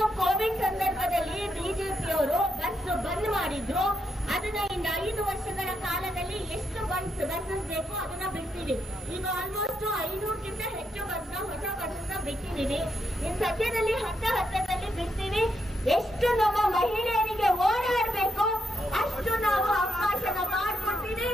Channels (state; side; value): normal; both; correlation 0.81